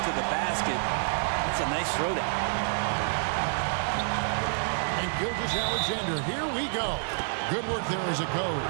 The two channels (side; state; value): left; silent; digital silence